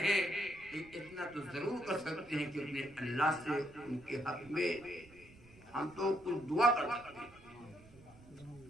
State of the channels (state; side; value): noise; right; rumble, 23 dB below the sound